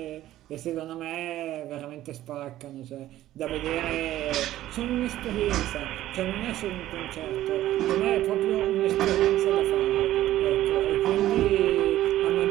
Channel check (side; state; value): left; quieter; 14.0 dB